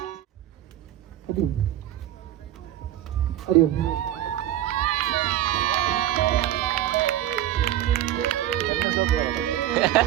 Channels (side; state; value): left; quieter; 12.7 dB